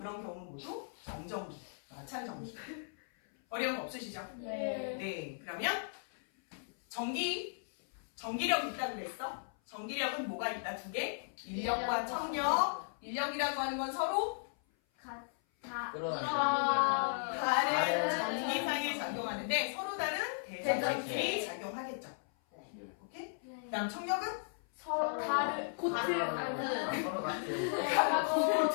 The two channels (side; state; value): right; silent; 54 dB below the other